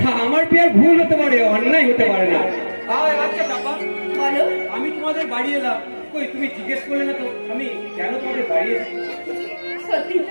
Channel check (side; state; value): both; inverted; correlation -1.00